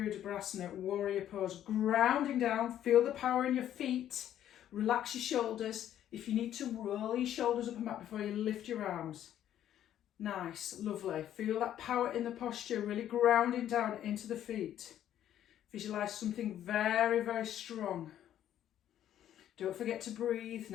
warrior pose, grounding down, feel the power in your feet. Relax your shoulders. If you need to, roll your shoulders up and back before you lift your arms. Nice, lovely. Feel that power in the posture, really grounding down into the feet. Visualize something very, very strong. Don't forget to breathe.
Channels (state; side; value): quieter; right; 11.2 dB